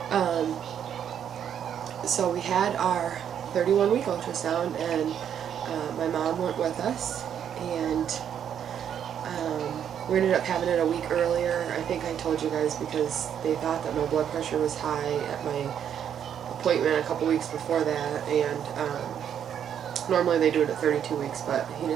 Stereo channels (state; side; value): quieter; left; 9.0 dB